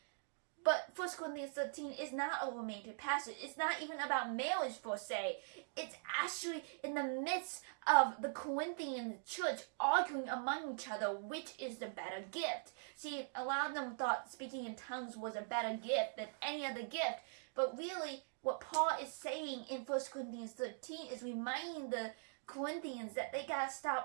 But 1 Corinthians 13 is not a romantic passage. It's not even about marriage per se. It's actually in the midst of the Corinthian church arguing among each other which is the better gift. See, a lot of them thought speaking in tongues was a better gift than any other gift. But really, what Paul is saying in 1 Corinthians 13 is reminding the Corinthians that they gotta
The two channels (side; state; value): left; silent; digital silence